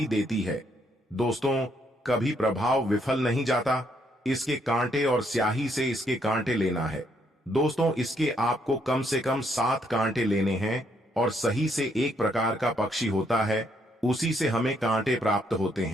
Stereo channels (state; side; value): normal; both; correlation 0.72